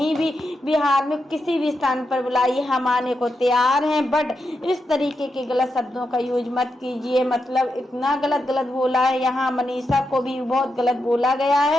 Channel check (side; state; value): both; normal; correlation 0.86